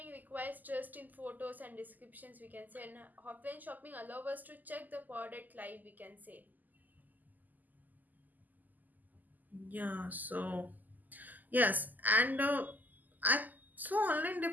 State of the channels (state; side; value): late; left; 0.083 ms